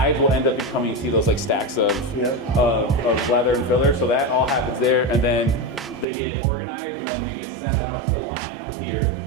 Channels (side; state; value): left; drops out; at 6.1 s